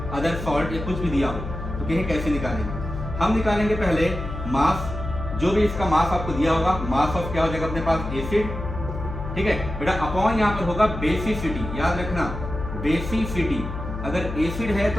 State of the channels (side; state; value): left; noise; hum, 7 dB below the sound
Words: अदर सॉल्ट या कुछ भी दिया हो, तो कहें कैसे निकालेंगे। हम निकालेंगे पहले मास, जो भी इसका मास आपको दिया होगा, मास ऑफ क्या हो जाएगा अपने पास एसिड, ठीक है बेटा, अपॉन यहाँ पर होगा बेसिसिटी, याद रखना बेसिसिटी, अगर एसिड है